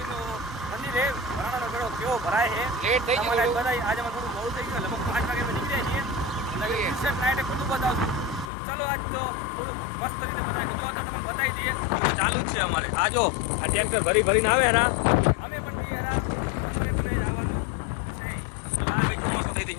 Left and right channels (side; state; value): right; drops out; at 8.5 s